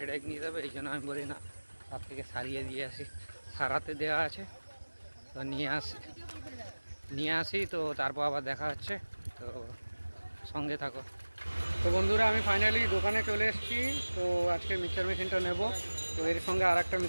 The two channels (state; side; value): inverted; both; correlation -1.00